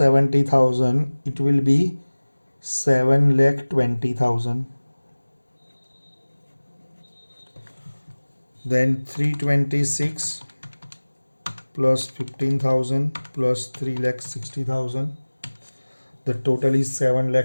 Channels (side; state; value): both; inverted; correlation -1.00